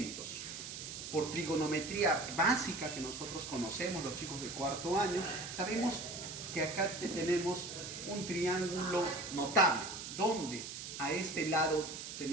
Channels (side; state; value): right; noise; hiss, 8 dB below the sound